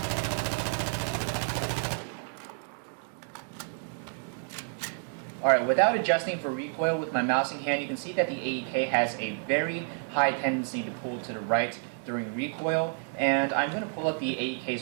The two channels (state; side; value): silent; left; 58 dB below the other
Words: Alright, without adjusting for recoil with my mousing hand, you can see that the AEK has a very high tendency to pull to the right during recoil, and I'm going to pull up the AEK's